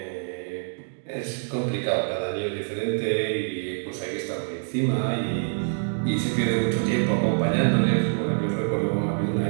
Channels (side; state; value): left; silent; digital silence